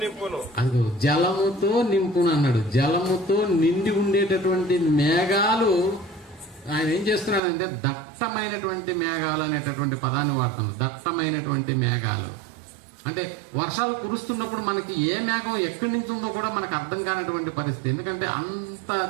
నింపును. అదిగో జలముతో నింపును అన్నాడు. జలముతో నిండి ఉండేటటువంటి మేఘాలు ఆయన ఏం చేస్తున్నాడంటే దట్టమైనటువంటి మేఘాలు అనేటటువంటి పదాన్ని వాడుతుంది. దట్టమైనటువంటి మేఘాలు అంటే వర్షాలు కురుస్తున్నప్పుడు మనకి ఏ మేఘం ఎక్కడి నుంచి ఉందో కూడా మనకు అర్థం కానటువంటి పరిస్థితి. ఎందుకంటే అంత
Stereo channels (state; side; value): drops out; left; at 7.4 s